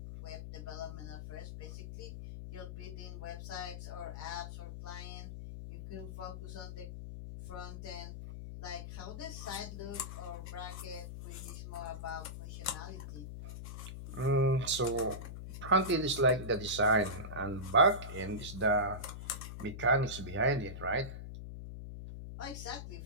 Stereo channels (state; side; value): noise; left; hum, 8 dB below the sound